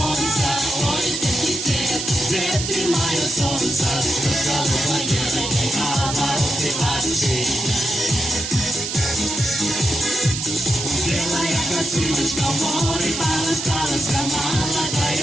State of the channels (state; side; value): noise; right; hiss, 4 dB below the sound